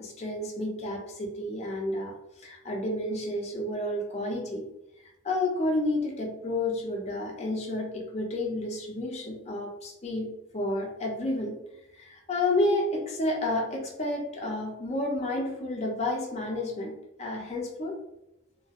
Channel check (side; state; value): both; normal; correlation 0.38